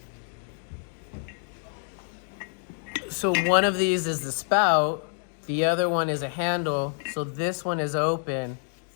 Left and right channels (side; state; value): right; silent; 60 dB below the other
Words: So one of these is the spout, the other one is a handle. So this one is open,